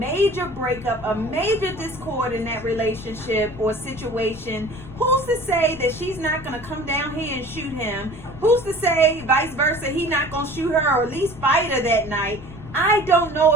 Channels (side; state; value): left; noise; rumble, 15 dB below the sound